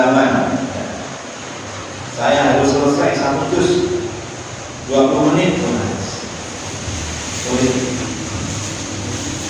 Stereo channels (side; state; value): both; identical; correlation 1.00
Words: Saya harus selesai 1 juz 20 menit.